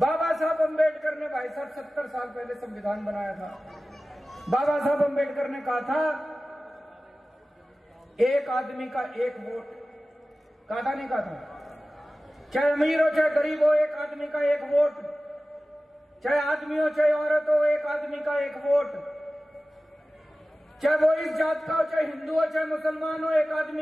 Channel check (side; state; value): both; normal; correlation 0.96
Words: साहब अम्बेडकर ने भाई साहब 70 साल पहले संविधान बनाया था। बाबा साहब अम्बेडकर ने कहा था एक आदमी का एक वोट। कहा था नहीं कहा था? चाहे अमीर हो चाहे गरीब हो, एक आदमी का एक वोट। चाहे आदमी हो चाहे औरत हो, एक आदमी का एक वोट। चाहे वो इस जात का हो चाहे हिंदू हो चाहे मुसलमान हो, एक